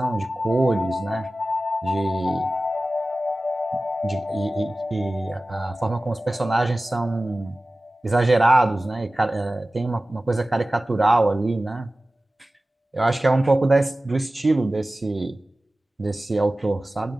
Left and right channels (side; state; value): both; normal; correlation 0.96